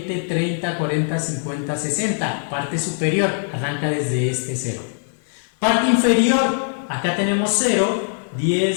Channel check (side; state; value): right; silent; digital silence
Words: 30, 40, 50, 60, parte superior, arranca desde este 0. Parte inferior, acá tenemos 0,